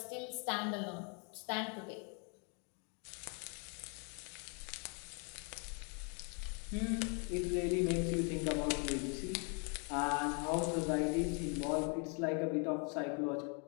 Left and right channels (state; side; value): quieter; right; 37.8 dB